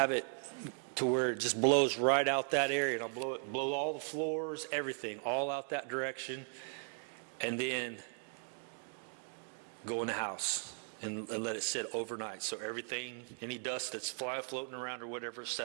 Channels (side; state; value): left; silent; 53 dB below the other